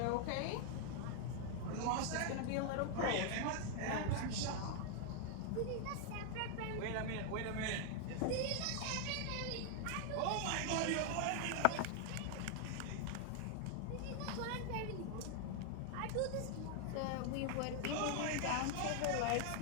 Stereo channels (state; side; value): different; both; correlation 0.00